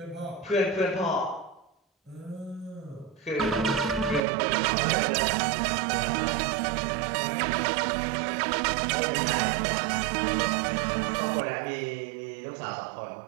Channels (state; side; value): drops out; left; at 4.2 s